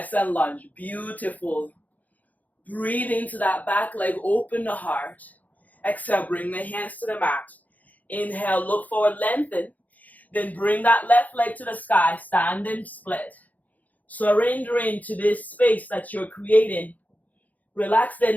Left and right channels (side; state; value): right; late; 0.078 ms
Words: lunge, beautiful. Breathe into that back leg, open the heart. Exhale, bring the hands to the mat. Inhale, look forward, lengthen. Then bring that left leg to the sky, standing split. Surrendering to this space that you're creating. Relax the